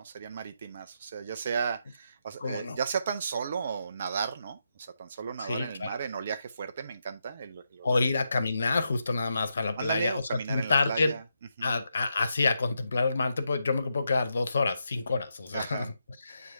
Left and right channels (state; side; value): inverted; both; correlation -0.83